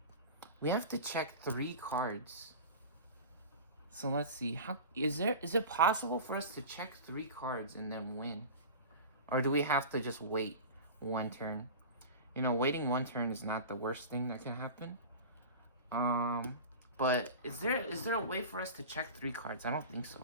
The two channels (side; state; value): both; inverted; correlation -0.33